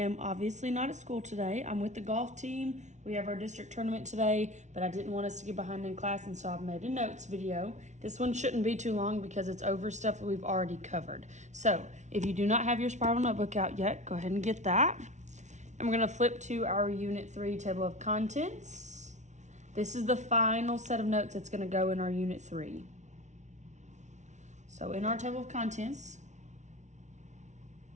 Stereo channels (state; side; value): late; left; 0.34 ms